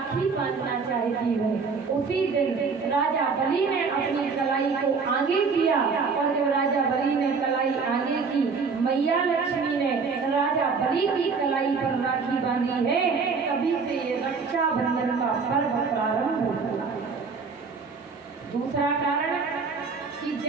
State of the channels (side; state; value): left; quieter; 5.0 dB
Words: बांधना चाहती हूँ। उसी दिन राजा बलि ने अपनी कलाई को आगे किया, और जब राजा बलि ने कलाई आगे की, मैया लक्ष्मी ने राजा बलि की कलाई पर राखी बांधी है। तभी से ये रक्षाबंधन का पर्व प्रारंभ हुआ। दूसरा कारण कि